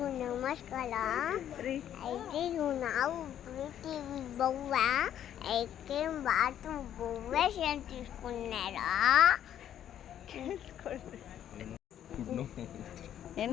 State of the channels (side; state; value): right; quieter; 10.5 dB